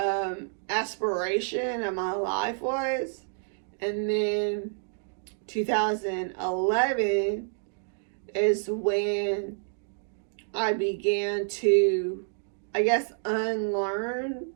aspiration of my life was. And then 2011 is when I began to, I guess, unlearn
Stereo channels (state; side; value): silent; left; digital silence